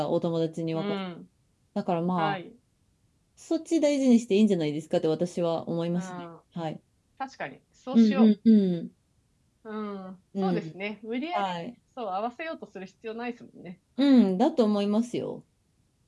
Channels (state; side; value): identical; both; correlation 1.00